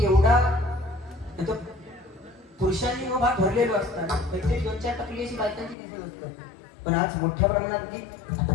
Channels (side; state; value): right; drops out; at 5.8 s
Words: एवढा पुरुषांनी हा भाग भरलेलो असताना काहीतरी 2-4 टक्के अशी बायकांची दिसत असतात पण आज मोठ्या प्रमाणात